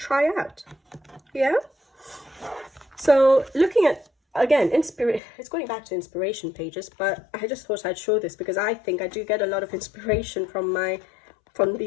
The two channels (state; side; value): drops out; right; at 5.2 s